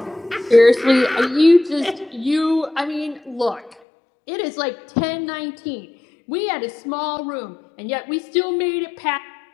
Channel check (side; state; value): right; drops out; at 3.8 s